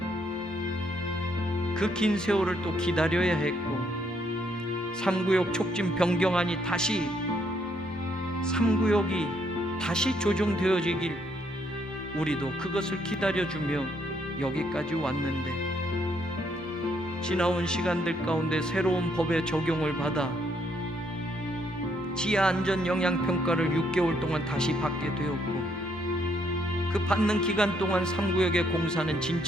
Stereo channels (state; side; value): normal; both; correlation 0.72